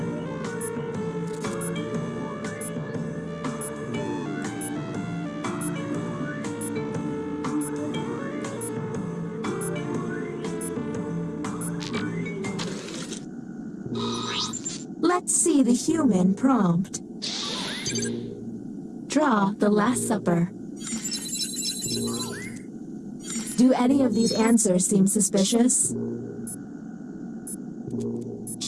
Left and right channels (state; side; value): identical; both; correlation 1.00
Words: Let's see the human prompt. Draw the Last Supper. Do any of these answers seem suspicious?